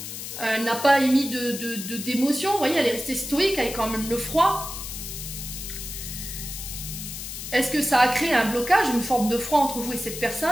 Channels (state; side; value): noise; left; hiss, 8 dB below the sound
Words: elle n'a pas émis d'émotion. Vous voyez, elle est restée stoïque avec quand même le froid. Est-ce que ça a créé un blocage, une forme de froid entre vous et cette